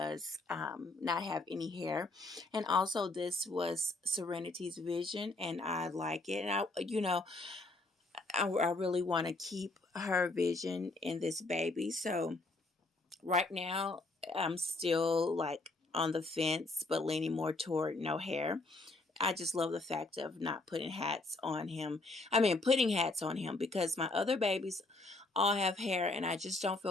not have any hair. And also this was Serenity's vision, and I like it. And I really want to keep her vision in this baby. So right now, I'm still like on the fence, but leaning more toward no hair. I just love the fact of not putting hats on him. I mean, putting hats on him because my other babies all have hair, and I just don't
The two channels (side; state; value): right; quieter; 3.2 dB